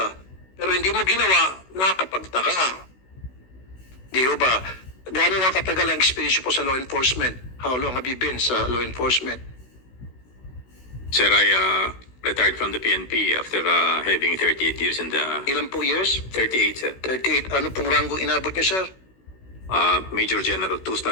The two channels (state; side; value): late; right; 16 ms